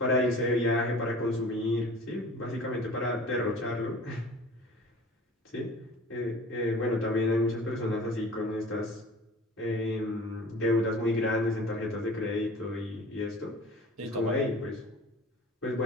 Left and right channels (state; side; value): normal; both; correlation 0.43